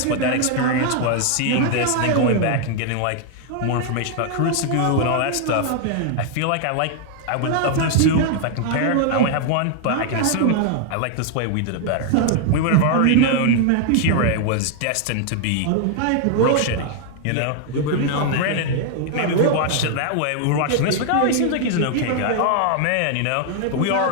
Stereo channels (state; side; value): different; both; correlation 0.00